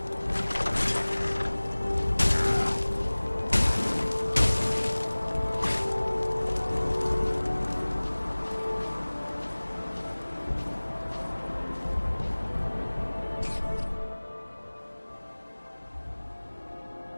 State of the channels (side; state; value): both; inverted; correlation -1.00